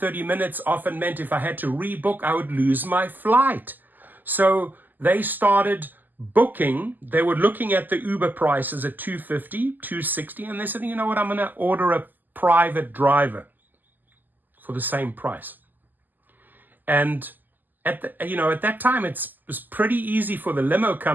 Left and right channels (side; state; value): left; late; 0.087 ms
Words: minutes often meant if I had to rebook, I would lose my flight. So they started booking. They were looking at the Uber prices at $250, $260, and they said, you know what, I'm going to order a private driver for the same price. And at that time, it was pretty easy for the limo